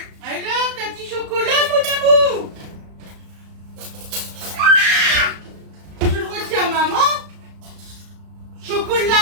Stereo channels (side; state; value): left; late; 34 ms